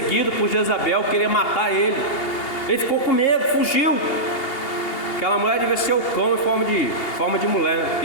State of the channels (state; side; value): late; right; 2.8 ms